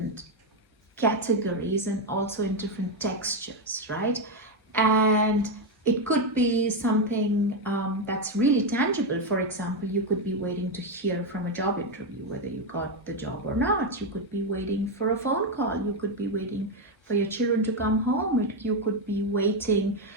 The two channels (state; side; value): normal; both; correlation 0.06